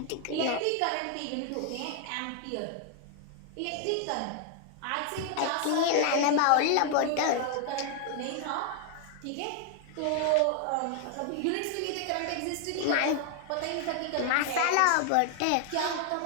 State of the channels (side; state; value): both; different; correlation 0.00